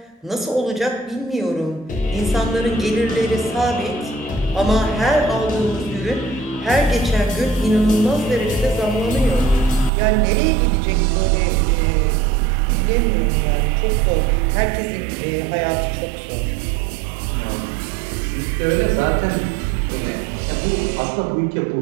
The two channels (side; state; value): left; drops out; at 9.9 s